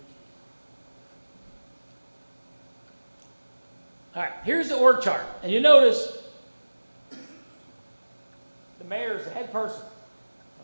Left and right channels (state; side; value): inverted; both; correlation -1.00